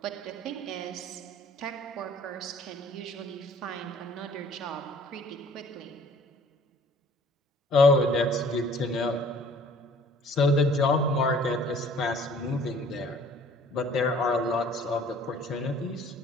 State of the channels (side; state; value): both; normal; correlation 0.53